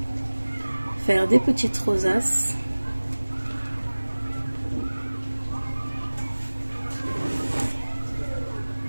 faire des petites rosaces.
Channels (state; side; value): inverted; both; correlation -1.00